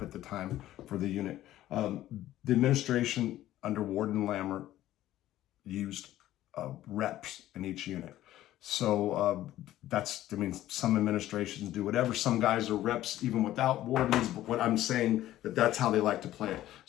at the time for the unit. The administration under Warden Lammer used reps in each unit. So some administrations do whatever. Some guys are reps even without wardens, but what I'm saying that's how they like to play it.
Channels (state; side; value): quieter; right; 14.0 dB